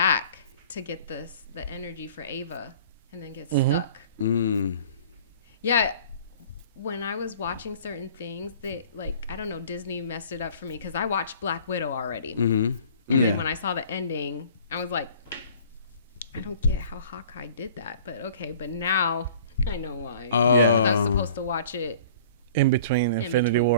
to get the energy for Ava and then get stuck. Mm. Yeah. When I was watching certain things, I don't know, Disney messed it up for me because I watched Black Widow already. Mm-hmm. And then when I saw the ending, I was like, I don't get how Hawkeye did that. But okay, but now I know why. Because I was supposed to watch it. In between Infinity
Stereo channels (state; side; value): inverted; both; correlation -0.49